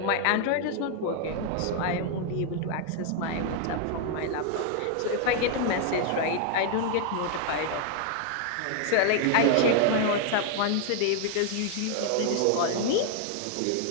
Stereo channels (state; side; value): different; both; correlation 0.00